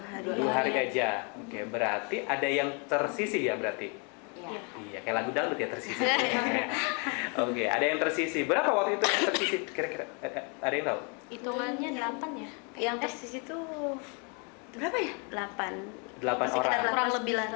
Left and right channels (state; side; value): quieter; right; 35.7 dB